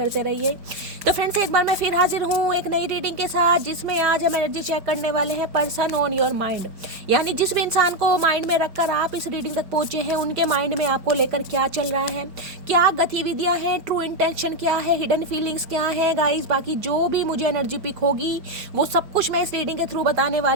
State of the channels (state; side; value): late; left; 5.0 ms